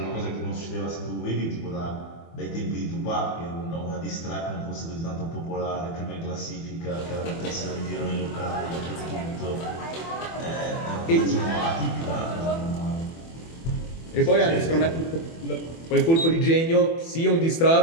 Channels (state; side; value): late; right; 24 ms